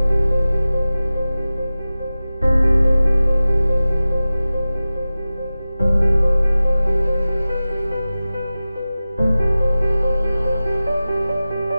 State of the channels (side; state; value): both; inverted; correlation -0.96